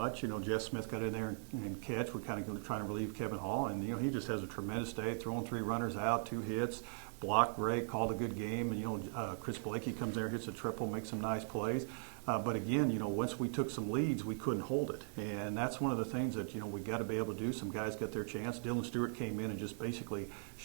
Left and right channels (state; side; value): silent; left; digital silence